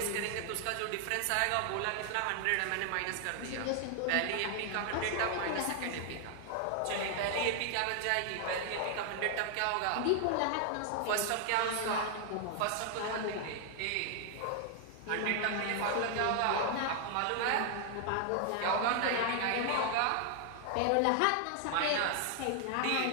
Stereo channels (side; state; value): both; different; correlation 0.00